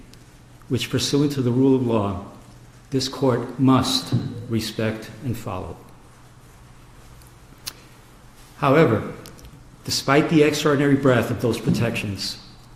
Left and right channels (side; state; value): both; identical; correlation 1.00